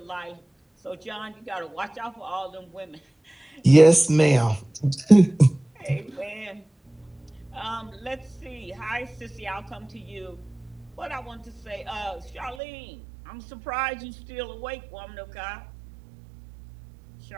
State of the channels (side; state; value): left; drops out; at 12.6 s